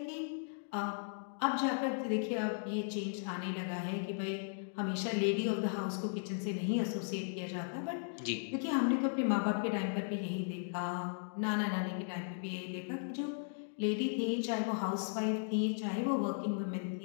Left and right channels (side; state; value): right; silent; digital silence